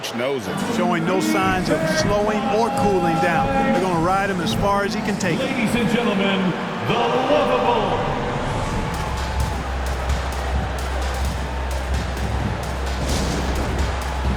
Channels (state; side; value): identical; both; correlation 1.00